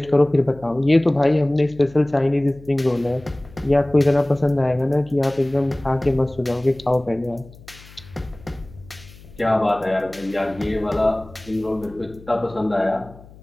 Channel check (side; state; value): left; noise; hum, 21 dB below the sound